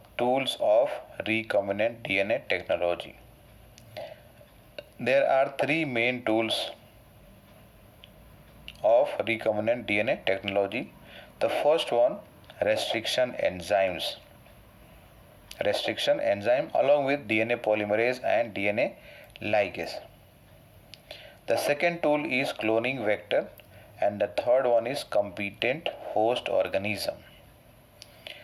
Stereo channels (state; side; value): identical; both; correlation 1.00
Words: tools of recombinant DNA technology. There are three main tools of recombinant DNA technology. The first one, restriction enzymes. Restriction enzyme along with DNA polymerase and DNA ligase. The second tool is cloning vector and the third one is competent host organism.